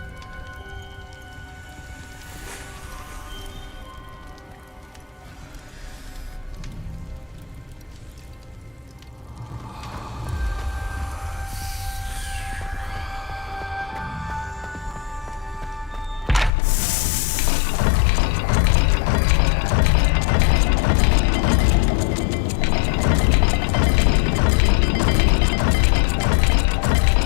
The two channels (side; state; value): right; drops out; at 16.5 s